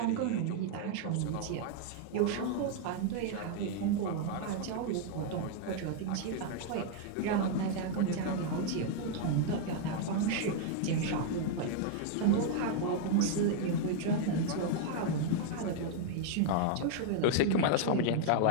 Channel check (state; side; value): different; both; correlation 0.00